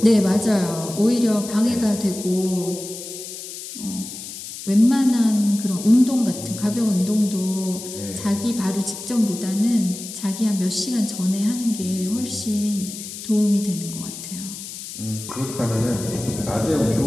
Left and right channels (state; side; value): noise; left; hiss, 10 dB below the sound